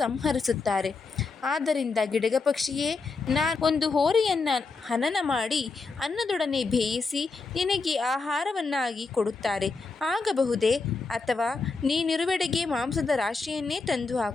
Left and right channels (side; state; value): right; quieter; 4.2 dB